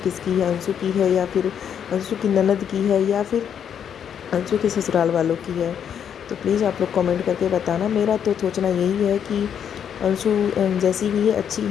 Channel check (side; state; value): right; quieter; 8.4 dB